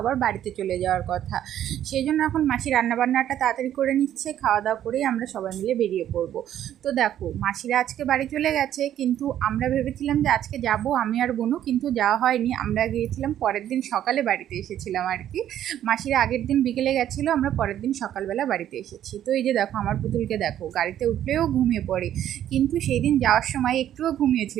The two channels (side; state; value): left; quieter; 11.2 dB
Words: বাড়িতে চলে যাওয়ার কথা, সেই জন্য এখন মাসি রান্নাবান্নাটা তাড়াতাড়ি করে নিচ্ছে। খাওয়া দাওয়া করেই আমরা সবাই মিলে বেরিয়ে পড়বো। তো দেখো, মাসিরা আজকে বাড়ি চলে গেছে, কিন্তু আমরা ভেবেছিলাম যে আজকে যাব আমি আর বোনু, কিন্তু যাওয়া হয়নি। আমরা গিয়েছিলাম পরের দিন সকালে, বাড়িতে এসেছিলাম আর কি। মাসিরা আগের দিন বিকেলে গেছিলো, আমরা পরের দিন সকালবেলা বাড়িতে এসেছি। তো এই যে দেখো, আমার পুতুলকে দেখো, গাড়িতে উঠলেও ঘুমিয়ে পড়ে, কিন্তু সেই দিন যাওয়ার সময় একটুও